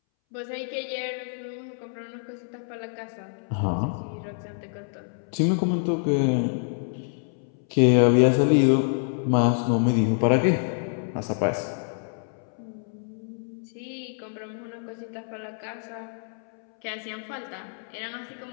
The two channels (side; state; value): right; silent; 60 dB below the other